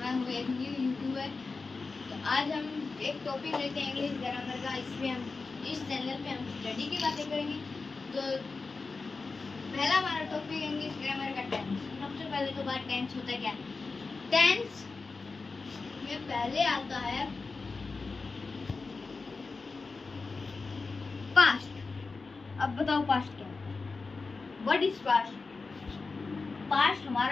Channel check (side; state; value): right; quieter; 4.1 dB